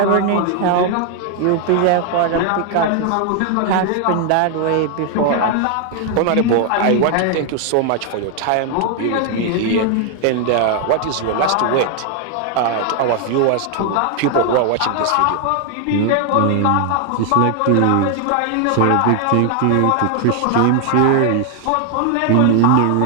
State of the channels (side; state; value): both; different; correlation 0.00